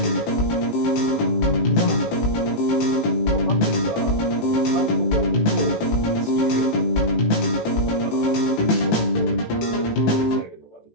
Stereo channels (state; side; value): late; right; 18 ms